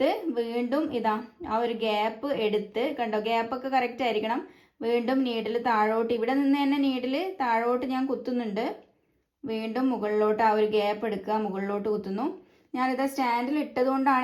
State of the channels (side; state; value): both; identical; correlation 1.00